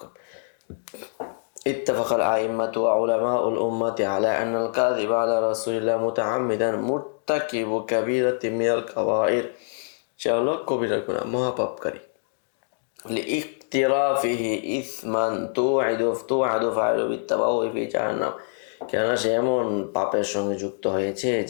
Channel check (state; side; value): silent; right; digital silence